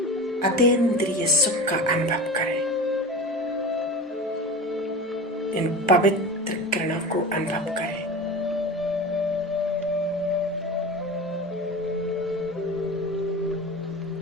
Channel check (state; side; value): normal; both; correlation 0.30